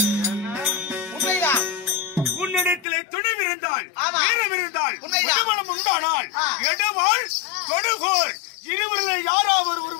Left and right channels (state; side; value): drops out; right; at 2.9 s